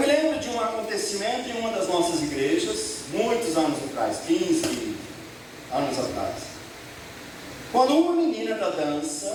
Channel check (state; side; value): identical; both; correlation 1.00